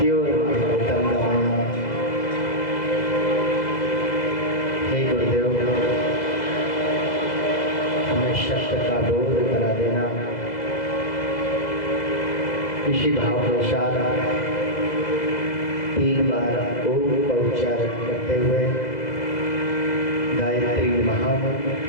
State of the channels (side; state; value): right; late; 2.0 ms